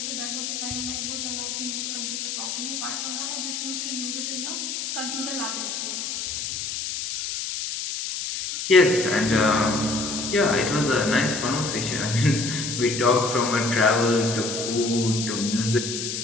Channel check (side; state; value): left; noise; hiss, 4 dB below the sound